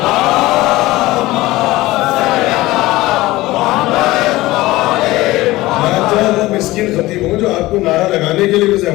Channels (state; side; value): quieter; right; 18.5 dB